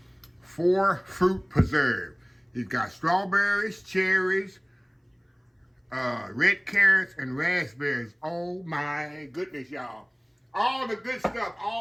4 fruit preserve. It's got strawberries, cherries, red carrots, and raspberries. Oh my goodness, y'all. All the good stuff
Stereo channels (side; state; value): both; identical; correlation 1.00